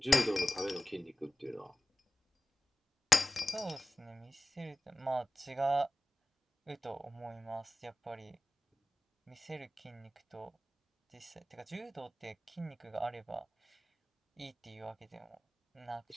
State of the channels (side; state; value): both; normal; correlation 0.94